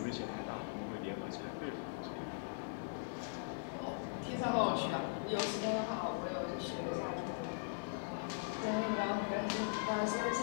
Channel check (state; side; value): silent; right; digital silence